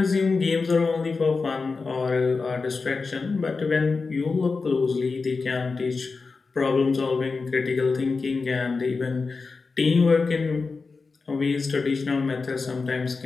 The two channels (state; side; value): quieter; right; 4.3 dB